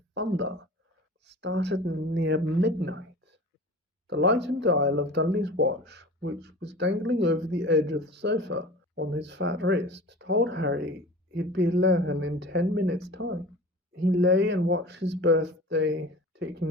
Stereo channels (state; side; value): normal; both; correlation 0.38